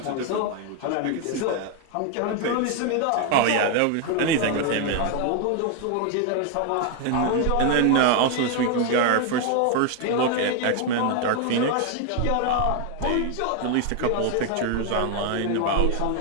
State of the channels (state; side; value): different; both; correlation 0.00